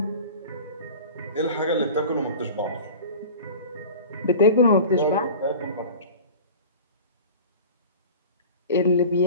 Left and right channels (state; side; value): inverted; both; correlation -0.37